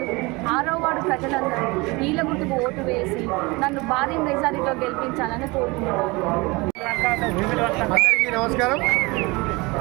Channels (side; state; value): left; quieter; 24.7 dB